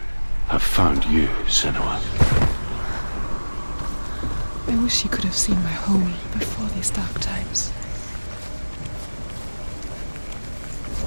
have found you, Senua. I wish you could have seen my home before these dark times.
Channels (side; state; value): both; inverted; correlation -1.00